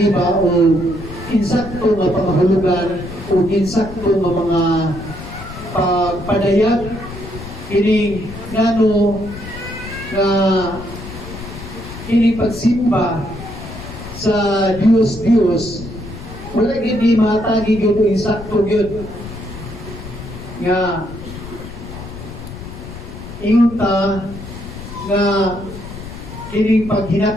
ba o insakto nga pangahulugan o insakto nga mga pagpadayag kini ngano nga kini pagsimba sa Dios wala gid ni matagi gyud o insakto gyud nga ingon ta nga kining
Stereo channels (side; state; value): left; noise; rumble, 12 dB below the sound